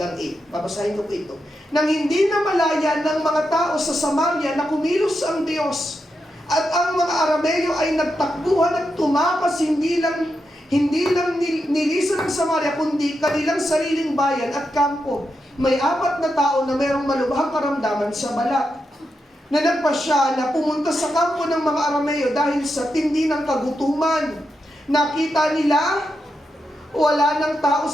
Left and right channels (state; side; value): normal; both; correlation 0.86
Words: 8. Babasahin ko po ito. Nang hindi na malaya ng mga tao sa Samaria na kumilos ang Diyos, at ang mga Arameo ay nagtakbuhan at tumakas hindi lang nilisan ng Samaria, kundi kanilang sariling bayan at kampo. May 4 na tao na mayroong malubhang karamdaman sa balat, na nagpasya na pumunta sa kampo ng mga Arameo dahil sa tindi ng kagutuman. Nakita nila, wala ng tao